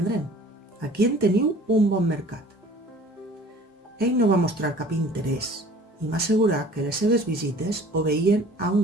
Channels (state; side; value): normal; both; correlation 0.49